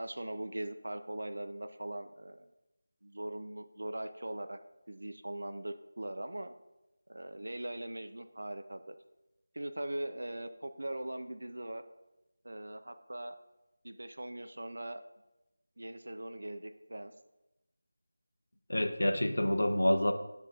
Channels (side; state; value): both; inverted; correlation -0.99